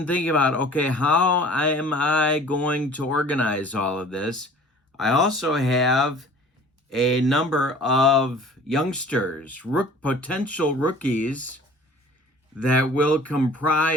thinking about, okay, how am I going to organize all of this? I also have a number of youngsters, potential rookies that will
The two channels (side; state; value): both; normal; correlation 0.47